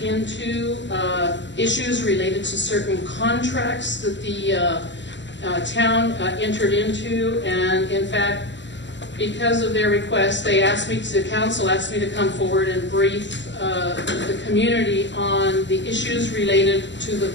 into issues related to certain contracts that the town entered into, and in fact, because of their request, they asked me, the council asked me to come forward and brief the community on the issues related to the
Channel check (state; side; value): late; right; 0.53 ms